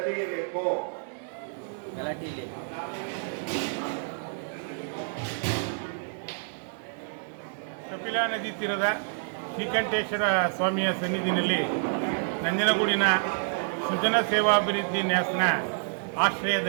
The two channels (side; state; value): left; silent; digital silence